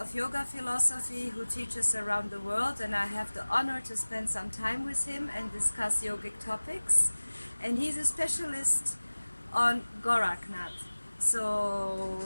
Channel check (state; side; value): inverted; both; correlation -1.00